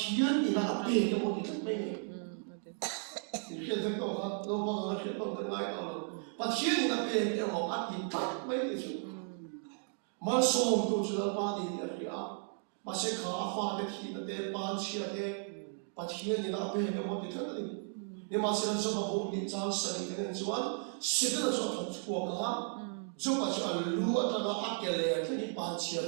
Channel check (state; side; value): silent; left; 55 dB below the other